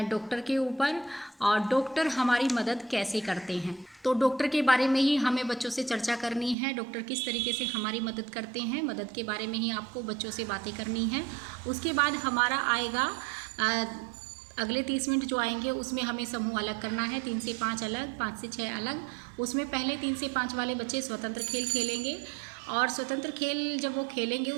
डॉक्टर के ऊपर और डॉक्टर हमारी मदद कैसे करते हैं। तो डॉक्टर के बारे में ही हमें बच्चों से चर्चा करनी है। डॉक्टर किस तरीके से हमारी मदद करते हैं, मदद के बारे में ही आपको बच्चों से बातें करनी है। उसके बाद हमारा आएगा अगले 30 मिनट जो आएंगे उसमें हमें समूह अलग करना है। 3 से 5 अलग, 5 से 6 अलग। उसमें पहले 3 से 5 वाले बच्चे स्वतंत्र खेल खेलेंगे और स्वतंत्र खेल जब वो खेलेंगे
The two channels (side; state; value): left; drops out; at 6.6 s